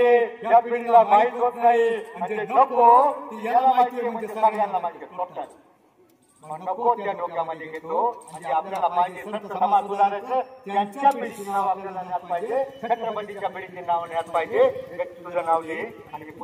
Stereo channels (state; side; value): identical; both; correlation 1.00